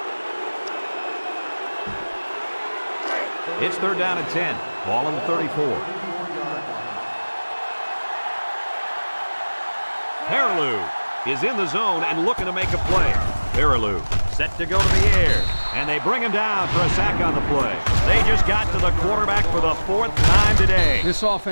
It's 3rd down and 10. Ball on the 34. Peterson is in the zone and looking to make a play. Peterson set to go to the air, and they bring him down for a sack on the play. They just got to the quarterback for the 4th time today. This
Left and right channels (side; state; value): both; inverted; correlation -1.00